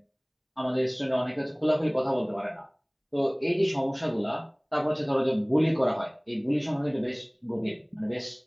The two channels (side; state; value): both; identical; correlation 1.00